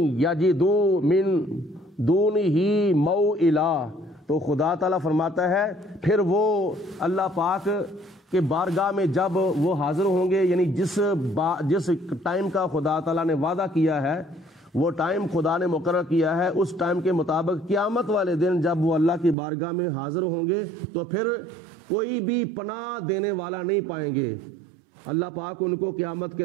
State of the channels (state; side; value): drops out; left; at 19.4 s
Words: يَجِدُوا مِن دُونِهِ مَوْئِلًا، تو خدا تعالیٰ فرماتا ہے پھر وہ اللہ پاک کہ بارگاہ میں جب وہ حاضر ہوں گے، یعنی جس ٹائم کا خدا تعالیٰ نے وعدہ کیا ہے، وہ ٹائم خدا نے مقرر کیا ہے، اس ٹائم کے مطابق قیامت والے دن جب وہ اللہ کی بارگاہ میں حاضر ہوں گے تو پھر کوئی بھی پناہ دینے والا نہیں پائیں گے، اللہ پاک ان کو قیامت کے